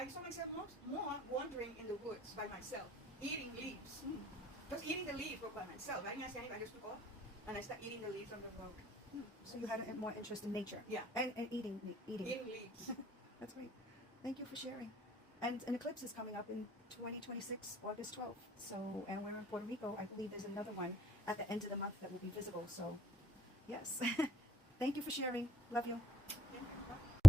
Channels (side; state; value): both; normal; correlation 0.70